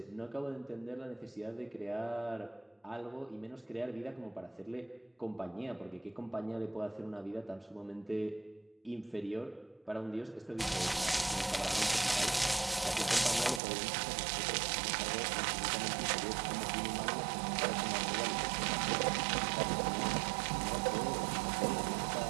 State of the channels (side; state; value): left; drops out; at 13.6 s